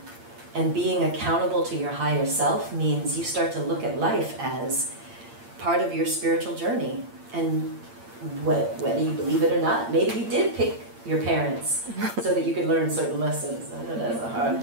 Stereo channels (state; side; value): late; left; 8.7 ms